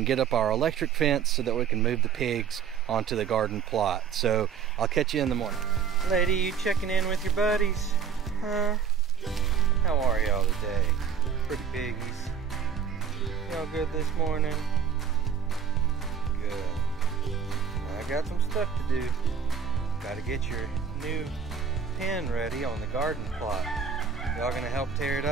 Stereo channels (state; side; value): quieter; left; 7.0 dB